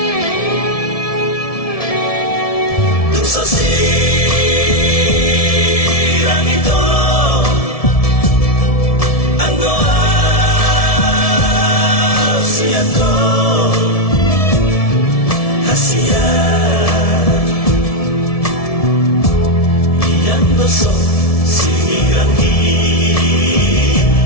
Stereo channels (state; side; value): late; right; 1.7 ms